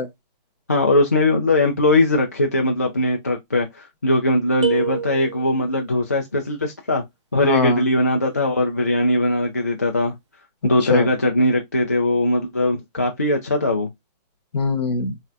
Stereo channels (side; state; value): both; inverted; correlation -0.60